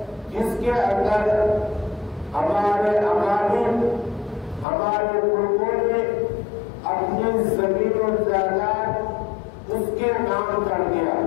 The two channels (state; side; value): drops out; right; at 4.7 s